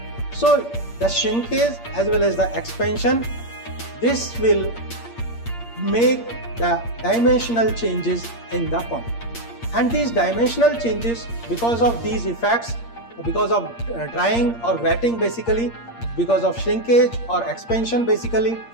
So the shrinkage as well as the expansion, this will make the dimensional changes in the concrete. And these dimensional changes, because of these effects, because of drying or wetting basically, because of shrinkage or expansion basically,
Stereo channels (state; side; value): late; right; 8.6 ms